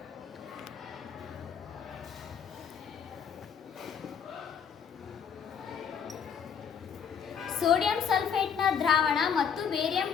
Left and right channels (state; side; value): quieter; right; 7.2 dB